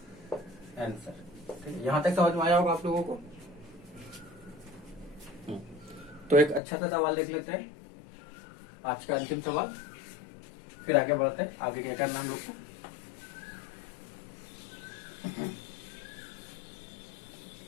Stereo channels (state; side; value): drops out; right; at 6.6 s